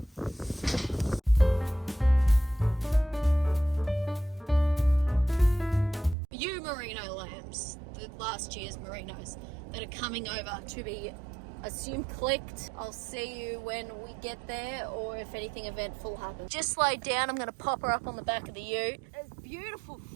Ewe merino lambs, the last year's merinos that are coming over to be assume clicked. I'll see you when we get there, or if anything eventful happens. Just laid down, I'm going to pop her up on the back of the ute. It's beautiful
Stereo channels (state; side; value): drops out; left; at 6.2 s